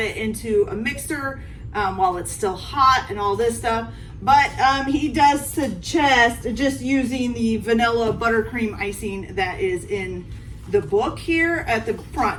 it into a mixer while it's still hot and all this stuff. But he does suggest just using the vanilla buttercream icing that is in the book here at the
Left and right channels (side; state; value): both; identical; correlation 1.00